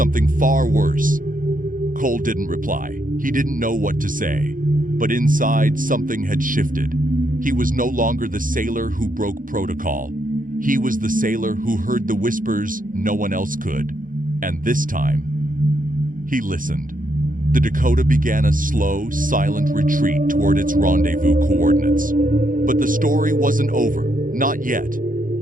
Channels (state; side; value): late; left; 0.39 ms